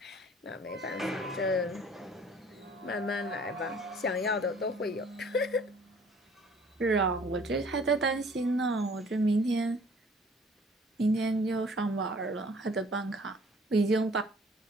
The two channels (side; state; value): both; normal; correlation 0.54